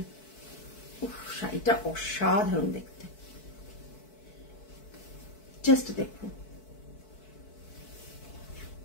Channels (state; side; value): late; right; 4.6 ms